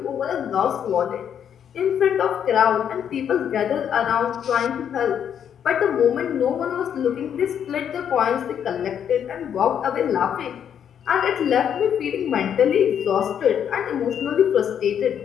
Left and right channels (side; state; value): right; quieter; 8.7 dB